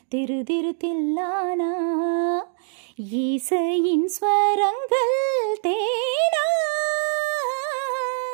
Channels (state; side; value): silent; left; 58 dB below the other